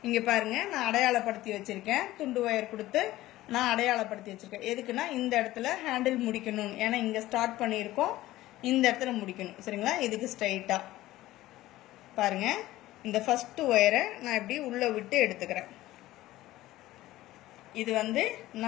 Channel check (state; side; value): quieter; right; 16.2 dB